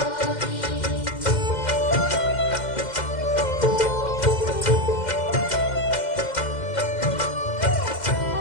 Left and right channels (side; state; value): right; late; 2.1 ms